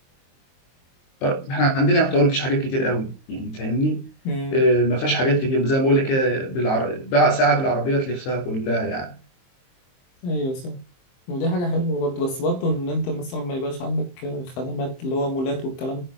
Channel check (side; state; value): right; late; 23 ms